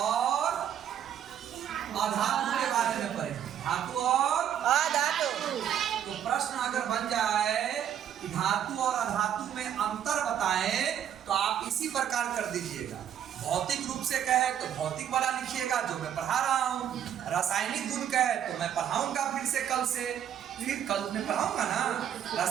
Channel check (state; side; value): quieter; left; 9.7 dB